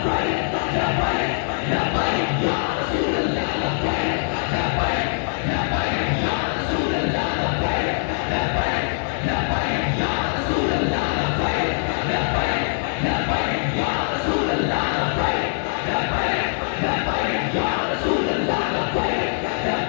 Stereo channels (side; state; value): right; silent; digital silence